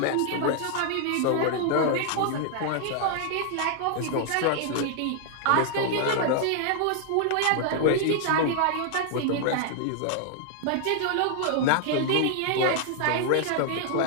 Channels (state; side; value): different; both; correlation 0.00